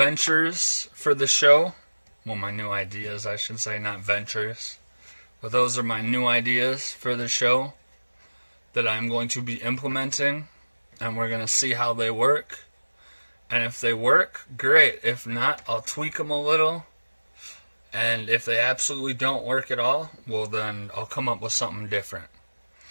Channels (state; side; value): inverted; both; correlation -1.00